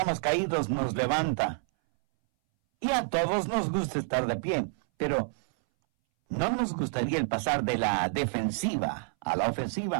caídos nos levanta. Y a todos nos gusta estar de pie, pero no nos gustaría el pasar de la defensiva a la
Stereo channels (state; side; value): silent; left; 59 dB below the other